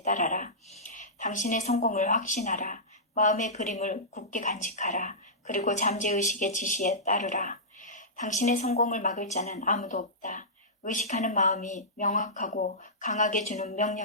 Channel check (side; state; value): both; normal; correlation -0.17